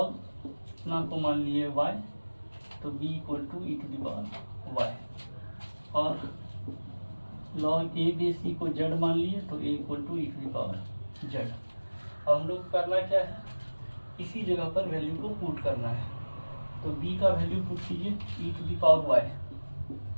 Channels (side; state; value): both; inverted; correlation -1.00